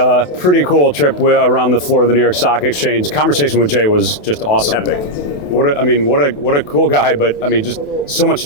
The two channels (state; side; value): late; right; 28 ms